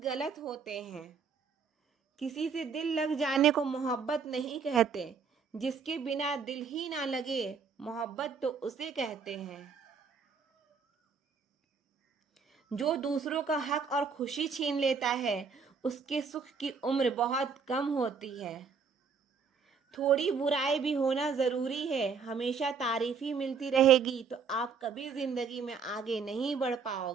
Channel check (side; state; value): left; quieter; 5.6 dB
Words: होते हैं। किसी से दिल लग जाने को मोहब्बत नहीं कहते, जिसके बिना दिल ही ना लगे मोहब्बत तो उसे कहते हैं। जो दूसरों का हक और खुशी छीन लेता है उसके सुख की उम्र बहुत कम होती है। थोड़ी बुराई भी होना जरूरी है, हमेशा तारीफ ही मिलती रहेगी तो आप कभी जिंदगी में आगे नहीं बढ़